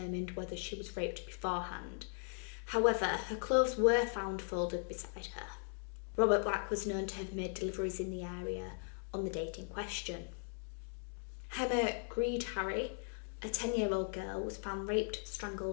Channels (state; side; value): silent; right; 52 dB below the other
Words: whether she was raped beforehand. However, her clothes were found folded beside her. Robert Black was known to have made deliveries in the area on the date in question. Emma Greed-Harry, a 10-year-old girl, was found raped,